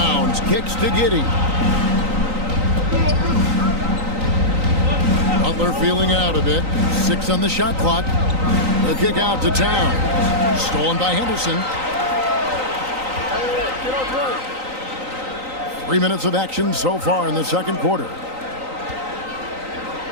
kicks to Giddey. Butler feeling it out a bit. 6 on the shot clock. The kick out to Towns. Stolen by Henderson. 3 minutes of action so far in the second quarter.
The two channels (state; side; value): late; left; 3.9 ms